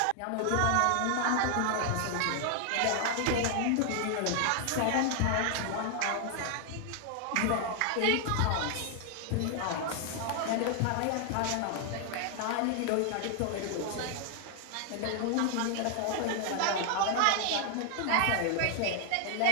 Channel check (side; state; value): both; different; correlation 0.00